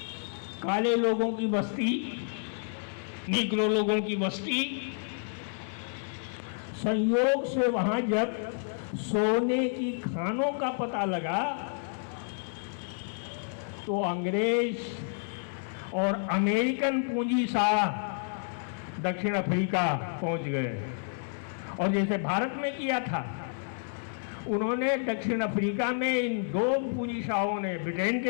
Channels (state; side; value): silent; right; 58 dB below the other